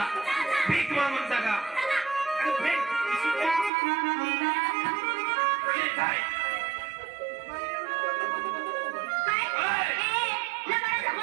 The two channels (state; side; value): drops out; left; at 3.7 s